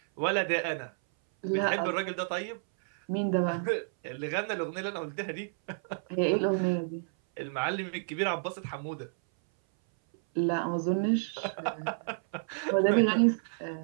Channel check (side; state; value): left; silent; 58 dB below the other